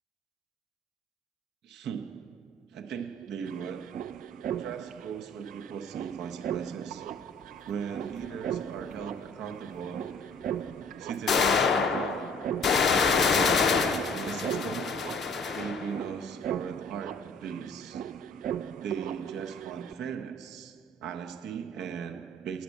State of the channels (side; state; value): both; normal; correlation 0.54